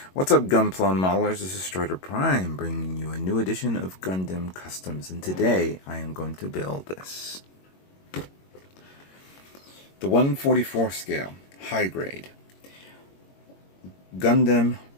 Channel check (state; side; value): late; right; 22 ms